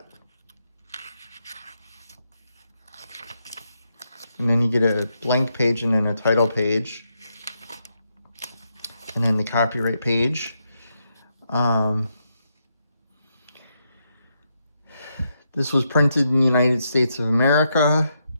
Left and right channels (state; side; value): inverted; both; correlation -0.81